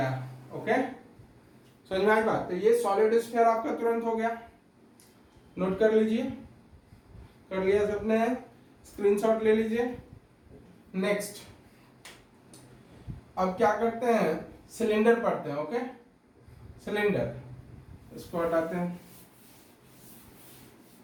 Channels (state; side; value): identical; both; correlation 1.00